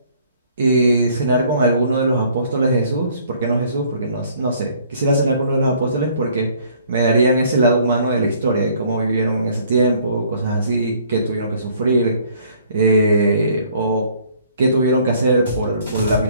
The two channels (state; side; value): inverted; both; correlation -0.59